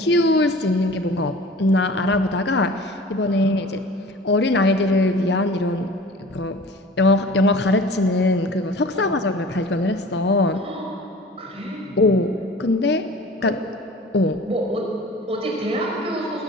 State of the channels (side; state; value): both; normal; correlation 0.43